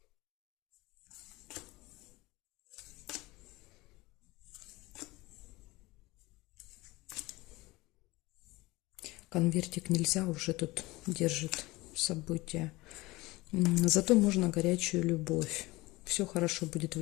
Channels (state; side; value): quieter; right; 21.0 dB